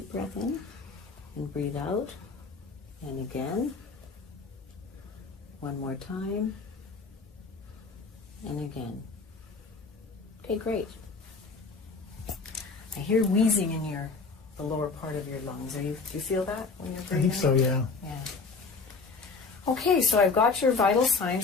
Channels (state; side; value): quieter; right; 4.4 dB